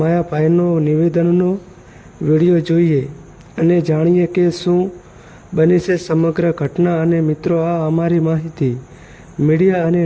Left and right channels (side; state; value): both; identical; correlation 1.00